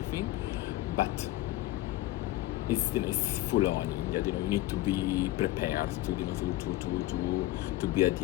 but it's full on India. You need to be prepared to be a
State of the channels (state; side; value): quieter; right; 16.6 dB